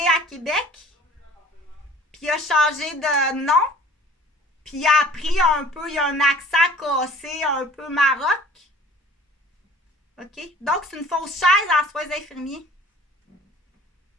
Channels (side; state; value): both; normal; correlation 0.48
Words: à Québec. Puis il a changé de nom. Puis il a appris un peu, il a un accent cassé, un peu maroc. OK? Donc, c'est une fausse chaise en soins infirmiers.